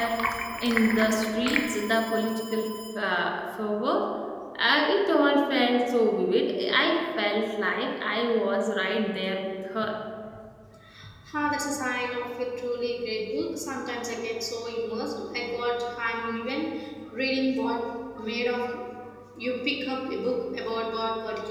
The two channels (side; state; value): both; identical; correlation 1.00